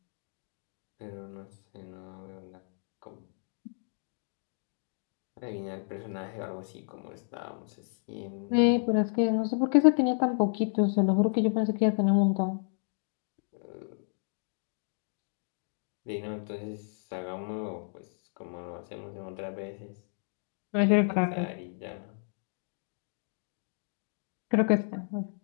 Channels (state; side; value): silent; right; digital silence